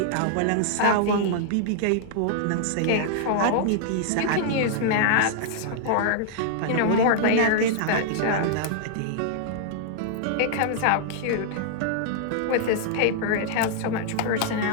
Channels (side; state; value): both; different; correlation -0.01